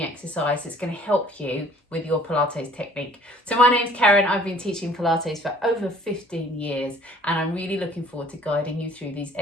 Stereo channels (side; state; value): both; normal; correlation 0.54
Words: exercise that's going to help you with your Pilates technique. So my name's Karen, I've been teaching Pilates for over 15 years, and I'm really looking forward to guiding you through these